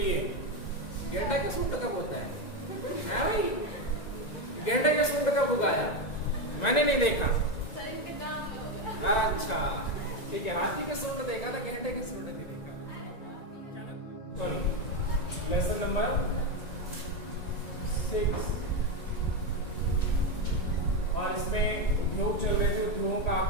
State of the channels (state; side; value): late; right; 1.9 ms